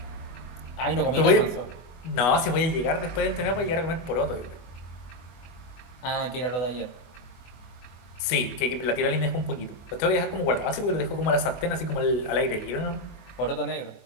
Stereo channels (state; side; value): late; right; 25 ms